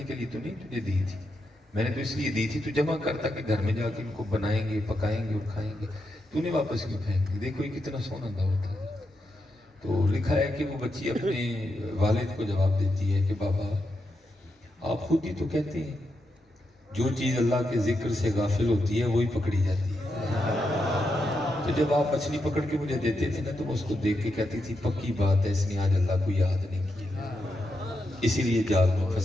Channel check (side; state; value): both; normal; correlation 0.84